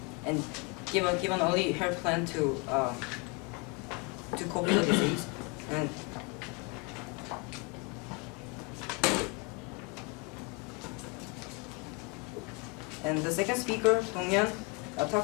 and give an early hair plan to cope with the disease. And the second speaker, Dong-Yeon,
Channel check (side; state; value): right; quieter; 29.8 dB